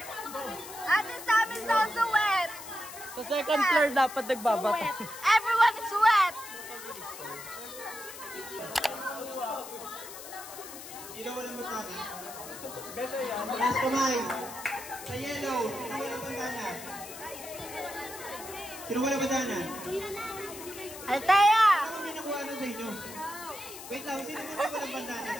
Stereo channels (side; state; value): left; noise; hiss, 13 dB below the sound